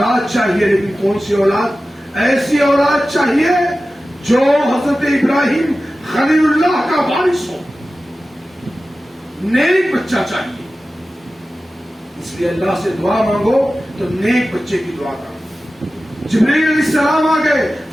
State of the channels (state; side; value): normal; both; correlation 0.95